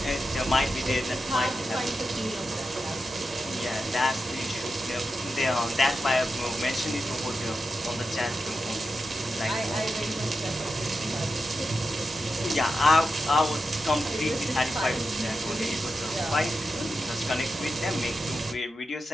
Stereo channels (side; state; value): both; normal; correlation 0.89